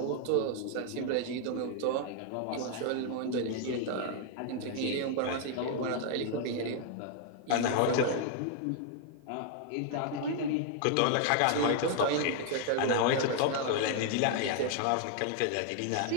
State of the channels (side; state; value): both; different; correlation 0.00